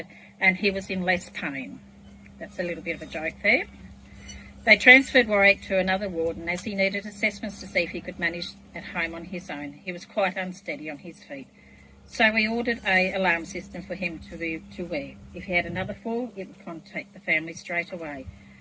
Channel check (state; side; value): identical; both; correlation 1.00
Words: and he was in less pain. That's a little bit of a joke there. They transferred Warwick to another ward, and as he needed assessments to see if he could manage at home on his own, he was quite unsteady on his feet. So we ordered an alarm system for him to wear. If he had another fall, it would contact the family straight away.